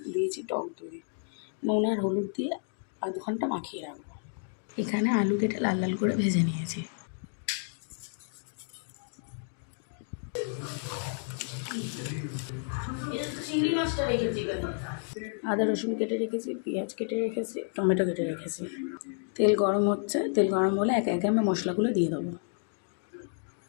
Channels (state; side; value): silent; right; 57 dB below the other